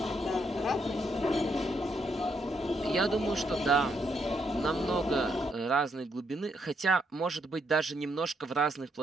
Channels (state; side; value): normal; both; correlation 0.76